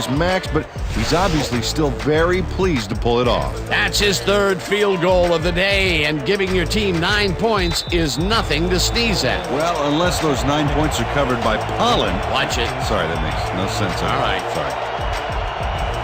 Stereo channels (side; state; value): both; identical; correlation 1.00